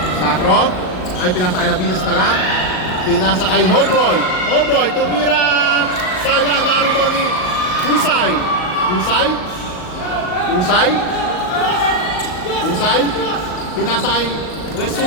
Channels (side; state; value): right; late; 38 ms